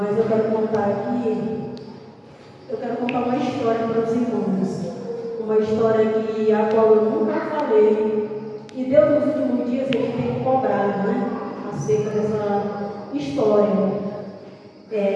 eu quero contar aqui, uma história para os irmãos. Uma história a qual eu nunca falei. E Deus, nos últimos dias, Ele tem cobrado, né? Acerca dessa história.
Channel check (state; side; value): identical; both; correlation 1.00